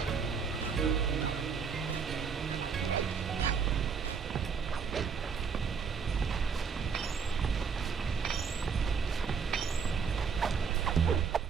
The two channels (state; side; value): quieter; left; 6.0 dB